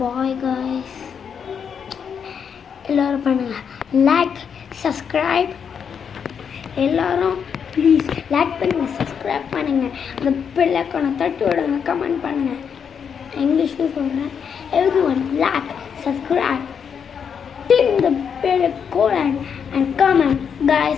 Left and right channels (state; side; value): quieter; right; 7.1 dB